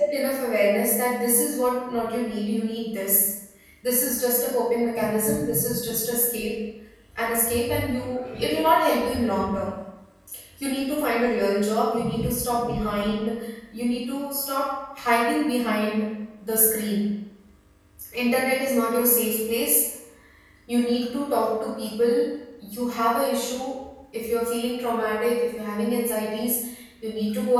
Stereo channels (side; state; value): both; identical; correlation 1.00